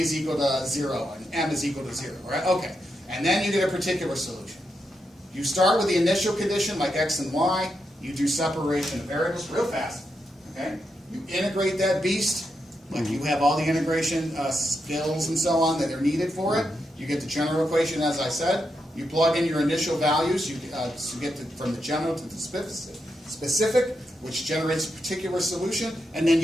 equal to 0 and m is equal to 0, right? Okay. And then you get a particular solution. You start with the initial condition like x and y. You do separation of variables real fast. Okay? You integrate that beast. Like you have all the integration skills and so on that are needed for it. You get the general equation, as I said. You plug in your initial values. You get from the general to the specific, which generates a particular solution, and then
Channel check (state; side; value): normal; both; correlation 0.84